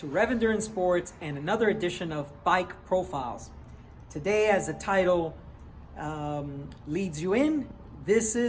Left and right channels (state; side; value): identical; both; correlation 1.00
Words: Rev Endurance Sports and another edition of Bike Profiles. Today, as the title leads you in, this